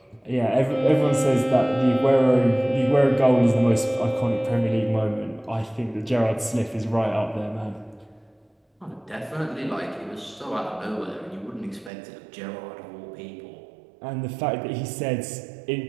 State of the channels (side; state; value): left; drops out; at 11.9 s